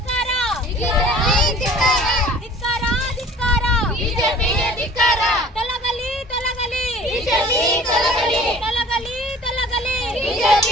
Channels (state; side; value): normal; both; correlation 0.48